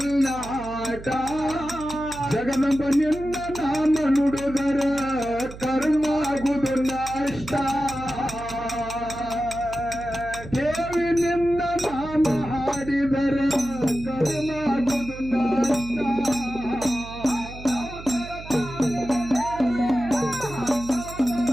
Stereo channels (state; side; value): noise; right; hum, 14 dB below the sound